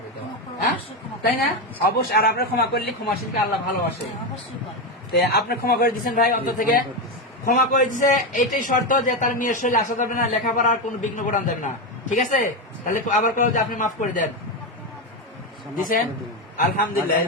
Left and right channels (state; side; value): normal; both; correlation 0.11